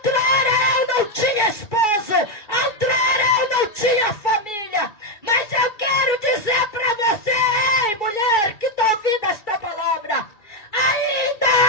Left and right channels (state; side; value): late; right; 2.3 ms